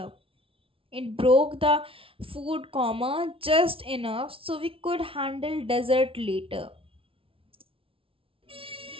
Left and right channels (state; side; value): late; left; 0.26 ms